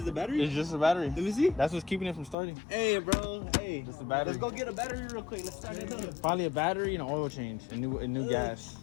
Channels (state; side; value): drops out; right; at 2.4 s